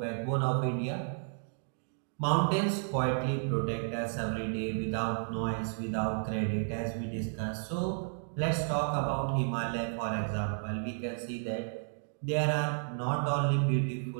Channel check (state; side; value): silent; left; digital silence